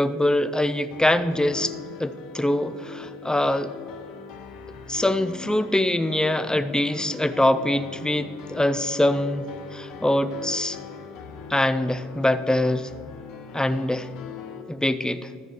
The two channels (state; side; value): normal; both; correlation 0.87